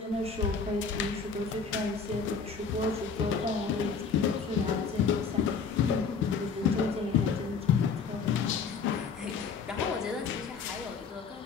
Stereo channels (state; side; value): quieter; right; 5.6 dB